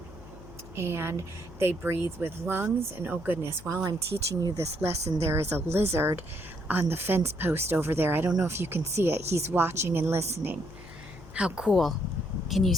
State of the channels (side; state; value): left; noise; hum, 17 dB below the sound